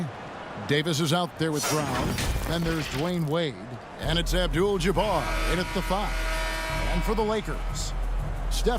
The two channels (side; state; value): both; identical; correlation 1.00